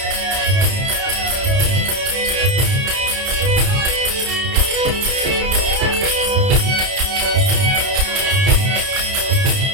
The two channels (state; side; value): late; left; 31 ms